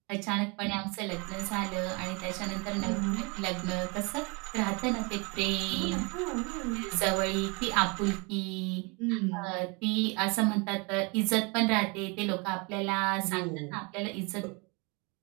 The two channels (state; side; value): quieter; left; 30.3 dB